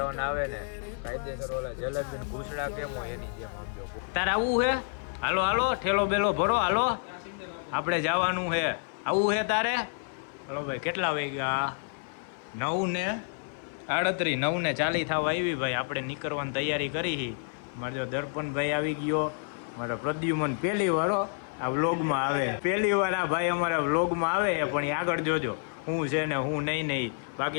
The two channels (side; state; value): right; silent; 58 dB below the other